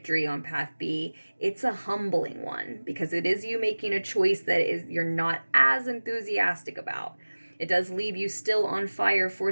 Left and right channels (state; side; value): inverted; both; correlation -1.00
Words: on path B, it's a humbling one, because it is you making a choice that is you're not as enthusiastic about. It does leave you still on fire for